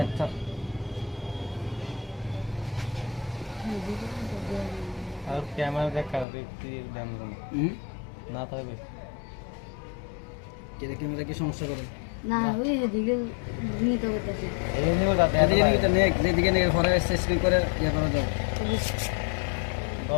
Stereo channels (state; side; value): drops out; right; at 6.2 s